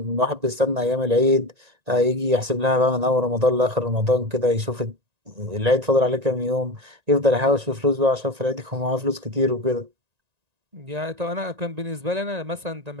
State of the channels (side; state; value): left; late; 1.9 ms